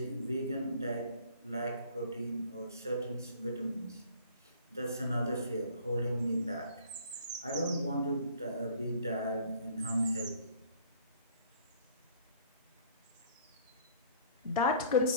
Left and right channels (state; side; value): inverted; both; correlation -0.54